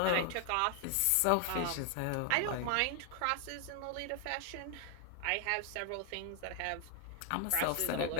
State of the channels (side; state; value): both; different; correlation 0.00